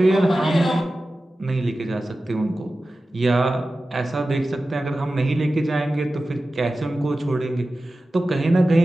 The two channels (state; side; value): normal; both; correlation 0.95